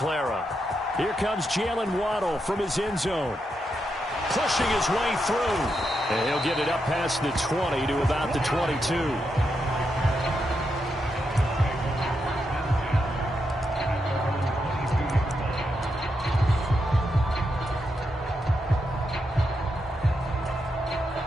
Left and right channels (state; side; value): normal; both; correlation 0.84